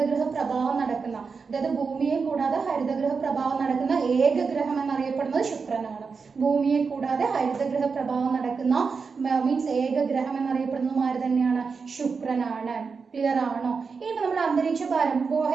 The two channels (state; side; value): quieter; left; 5.1 dB